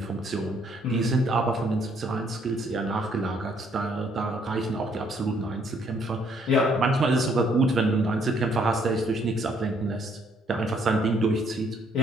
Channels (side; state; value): both; normal; correlation 0.67